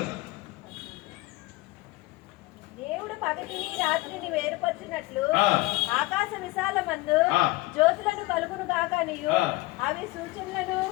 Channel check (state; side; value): quieter; right; 20.8 dB